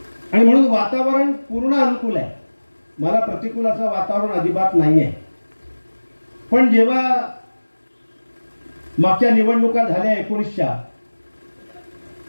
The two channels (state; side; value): inverted; both; correlation -1.00